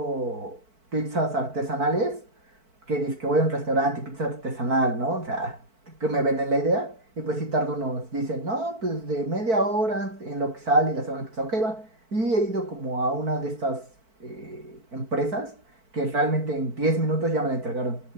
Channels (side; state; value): left; late; 4.5 ms